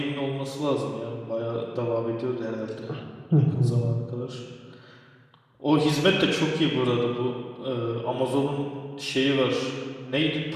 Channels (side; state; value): both; identical; correlation 1.00